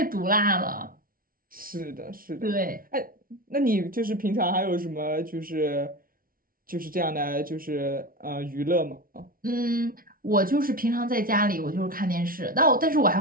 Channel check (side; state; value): left; late; 0.42 ms